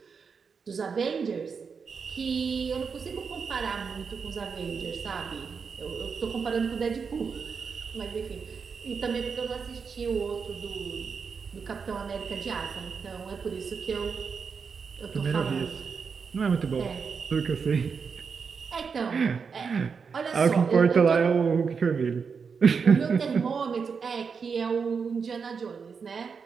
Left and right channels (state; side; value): quieter; left; 5.7 dB